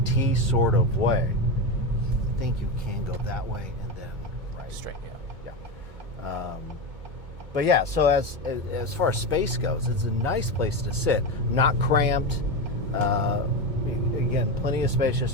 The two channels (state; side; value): late; left; 2.2 ms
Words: sort of way. I think you can go that way and then right. Straight, yeah. Yeah. But yeah, so as far as space goes, it's a nice place to sit. Not cramped. Again, plenty of space just